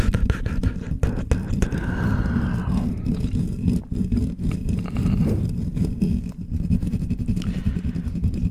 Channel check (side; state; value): both; identical; correlation 1.00